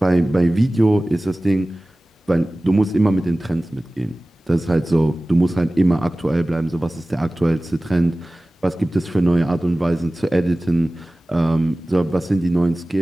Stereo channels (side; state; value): both; normal; correlation 0.97